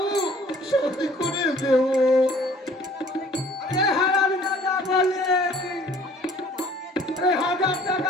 শোধ করে দেব। আরে হারাম দাদা বলে, আরে 1000 টাকা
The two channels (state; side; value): normal; both; correlation 0.54